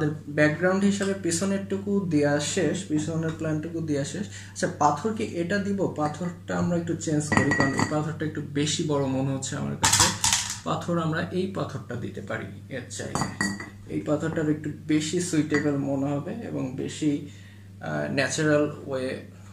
ব্যাকগ্রাউন্ড হিসাবে পিছনেরটুকু দেওয়া শেষ, পিছনের প্ল্যানটুকু দেওয়া শেষ। আচ্ছা, পাথর কি এটা দিব? পাথরটা আমরা একটু চেঞ্জ করি, কারণ এই পাথরটা একটু বেশি বড় মনে হচ্ছে আমার কাছে। পাথর আমরা এই পাথরটা দিতে পারি এর চাইলে। এই পাথরটার একটু বেশি সুইটেবল মনে হবে এবং বেশি ন্যাচারাল ওয়ে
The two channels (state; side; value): identical; both; correlation 1.00